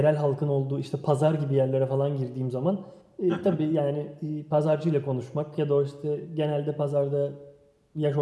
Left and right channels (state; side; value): identical; both; correlation 1.00